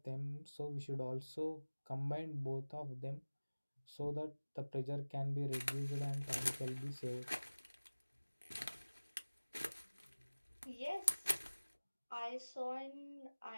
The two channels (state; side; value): inverted; both; correlation -1.00